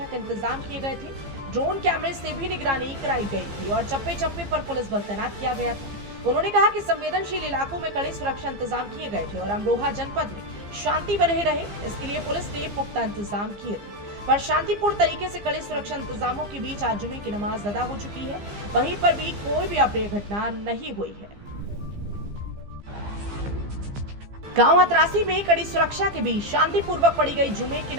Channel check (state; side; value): late; left; 15 ms